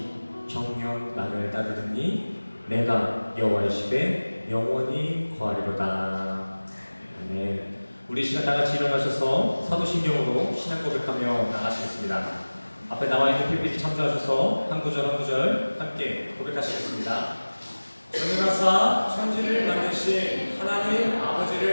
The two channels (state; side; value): inverted; both; correlation -1.00